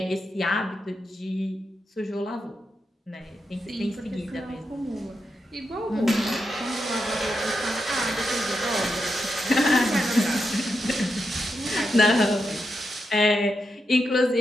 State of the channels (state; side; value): normal; both; correlation 0.85